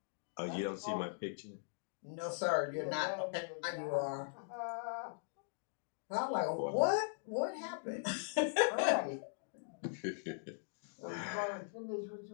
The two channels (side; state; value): right; silent; digital silence